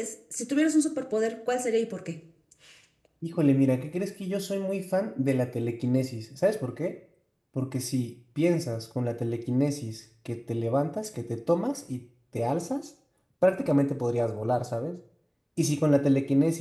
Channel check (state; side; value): identical; both; correlation 1.00